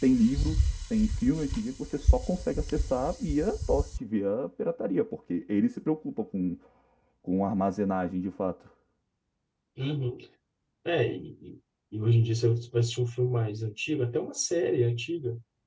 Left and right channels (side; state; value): both; identical; correlation 1.00